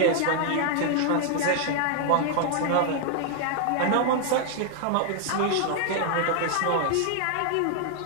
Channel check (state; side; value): different; both; correlation 0.00